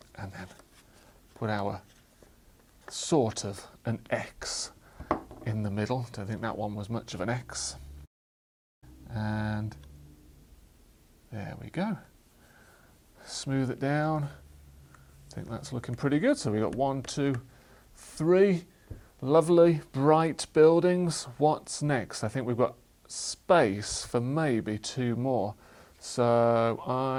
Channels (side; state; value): both; identical; correlation 1.00